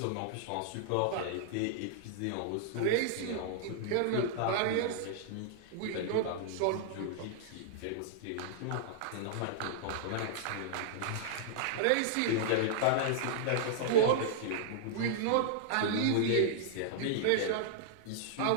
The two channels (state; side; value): different; both; correlation -0.01